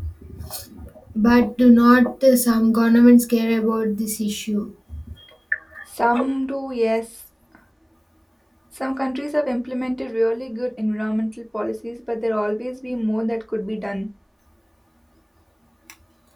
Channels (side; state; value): both; identical; correlation 1.00